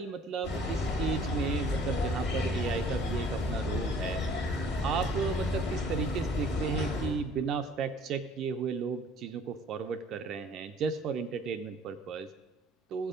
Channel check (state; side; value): normal; both; correlation 0.53